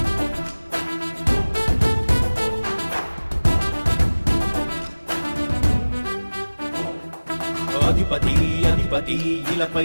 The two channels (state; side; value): inverted; both; correlation -1.00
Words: అధిపతి అధిపతి ఇలపై